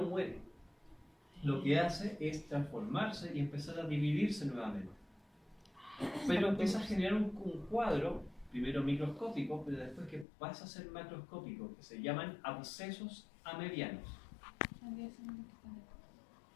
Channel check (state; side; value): drops out; right; at 10.2 s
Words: muere. Lo que hace es transformarse y empezar a dividirse nuevamente. Pero empieza a generar un cuadro, primero microscópico, pero después que pasa a ser macroscópico, que se llaman abscesos amebianos.